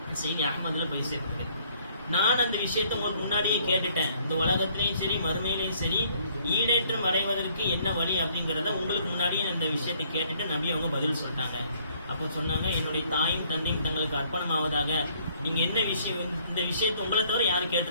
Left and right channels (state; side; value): inverted; both; correlation -0.63